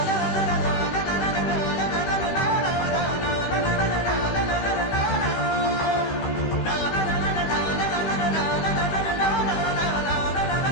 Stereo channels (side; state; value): right; late; 16 ms